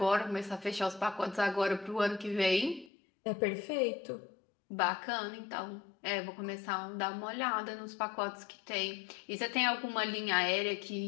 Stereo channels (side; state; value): right; drops out; at 2.9 s